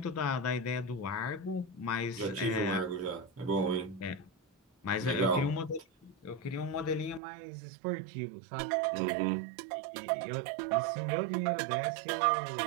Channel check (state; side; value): drops out; left; at 7.2 s